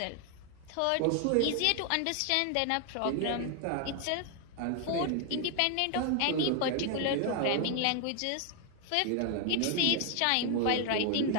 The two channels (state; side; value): different; both; correlation 0.00